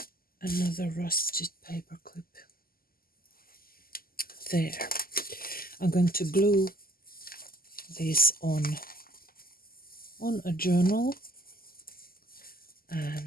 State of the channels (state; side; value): late; right; 0.42 ms